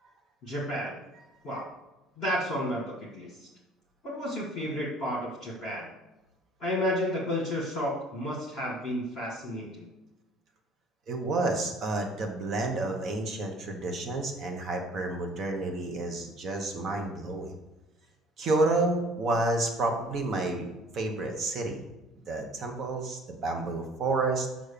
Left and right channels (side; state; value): both; normal; correlation 0.52